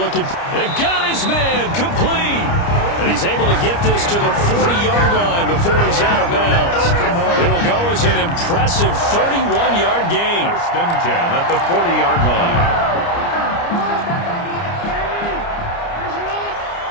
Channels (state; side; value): late; right; 29 ms